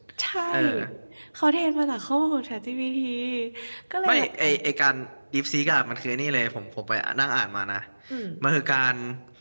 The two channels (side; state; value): both; inverted; correlation -1.00